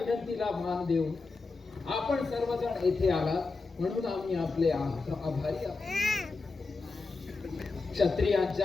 मान देऊन आपण सर्वजण येथे आलात म्हणून आम्ही आपले आभारी आहोत.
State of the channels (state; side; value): quieter; right; 3.9 dB